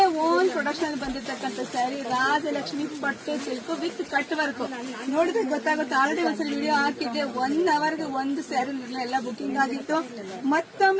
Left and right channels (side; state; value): both; identical; correlation 1.00